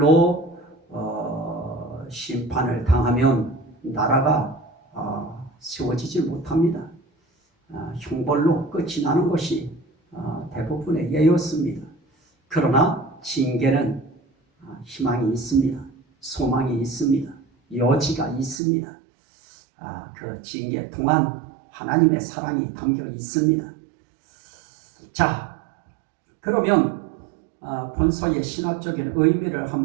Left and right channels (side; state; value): left; drops out; at 18.6 s